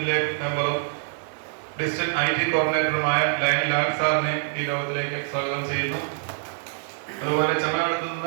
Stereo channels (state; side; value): silent; left; 62 dB below the other